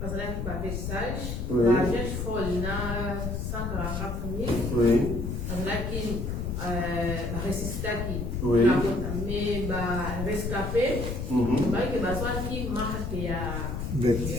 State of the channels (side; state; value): left; noise; rumble, 3 dB below the sound